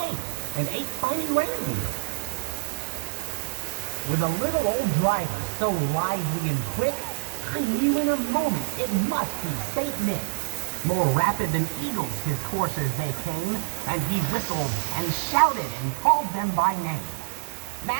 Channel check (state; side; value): silent; left; digital silence